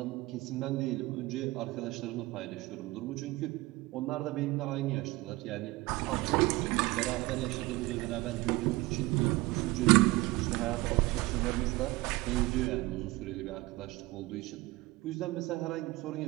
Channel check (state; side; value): quieter; left; 20.7 dB